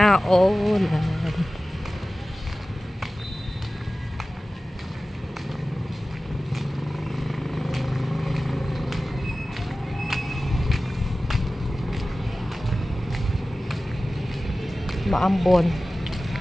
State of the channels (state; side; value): normal; both; correlation 0.96